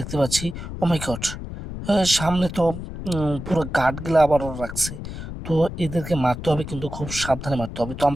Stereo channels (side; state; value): left; noise; rumble, 9 dB below the sound